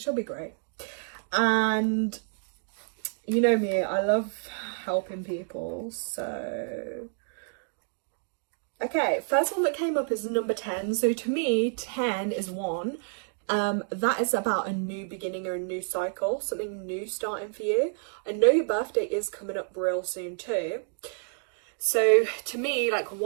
be great. And you know me, I love helping people, so... Okay, first one that came up is number 10. So to me, 10 is 1. That is about a new beginning or a new cycle, something new starting for you. I know your birthday is coming up real soon too. So to me, like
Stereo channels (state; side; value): silent; left; 59 dB below the other